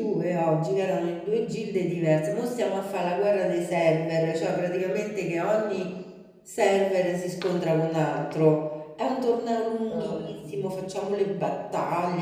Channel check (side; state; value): both; identical; correlation 1.00